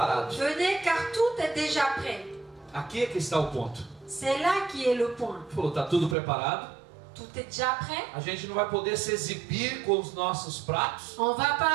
venez car tout est déjà prêt. Aqui é que está o ponto. C'est là qui est le point. Ele falou: está tudo preparado. Tout est déjà prêt. A gente não vai poder se exibir com os nossos pratos. On va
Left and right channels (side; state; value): left; drops out; at 6.2 s